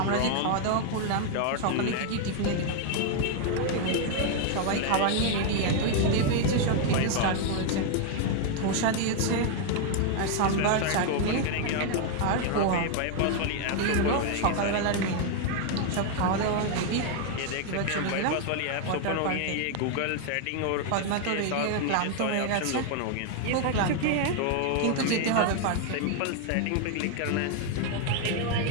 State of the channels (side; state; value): both; different; correlation 0.00